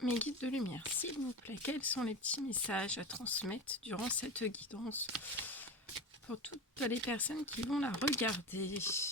Mes guides de lumière, s'il vous plaît, quels sont les petits messages à transmettre durant cette guidance pour toutes les personnes qui vont la regarder?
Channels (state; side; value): normal; both; correlation 0.25